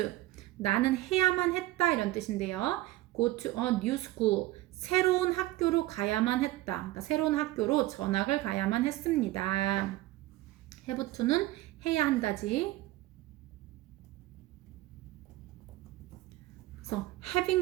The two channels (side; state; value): left; quieter; 17.2 dB